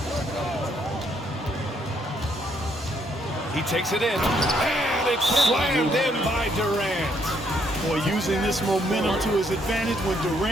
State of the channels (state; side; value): normal; both; correlation 0.71